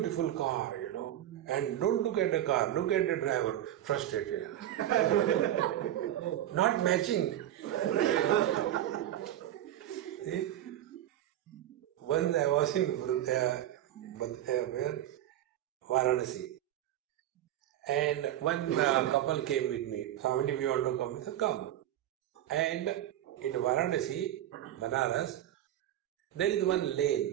car, and don't look at the car, look at the driver, frustrated. Not matching. See? Once I was in Varanasi, and one couple came with me. Swami, we want to come. I said, come. And in Varanasi, Banaras, there is one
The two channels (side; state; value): left; quieter; 12.4 dB